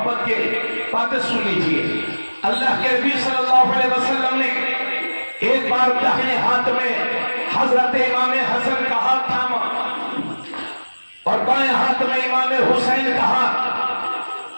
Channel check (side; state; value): both; inverted; correlation -1.00